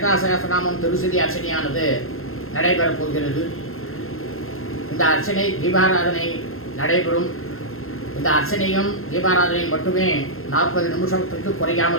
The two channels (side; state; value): right; late; 0.61 ms